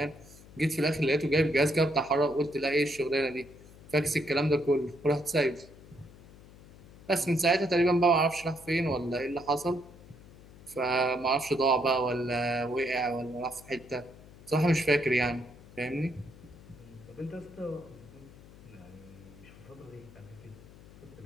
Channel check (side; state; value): left; noise; hum, 21 dB below the sound